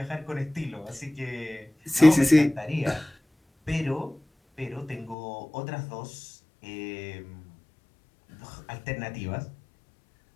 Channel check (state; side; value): drops out; right; at 5.2 s